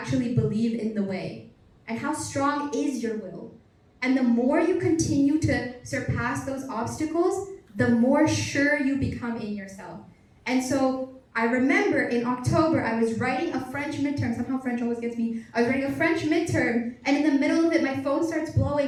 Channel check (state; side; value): identical; both; correlation 1.00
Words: believe in the way? And how strong is your will? And the more you continue to surpass those obstacles, the more sure you become in yourself. And so I remember in October, I was writing a French midterm. Somehow French always gets me. I was writing a French midterm, and in the middle of it, my phone starts